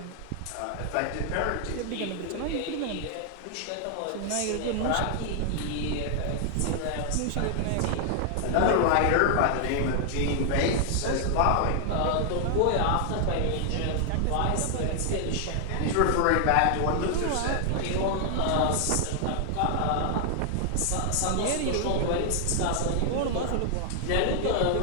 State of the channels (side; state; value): both; different; correlation 0.00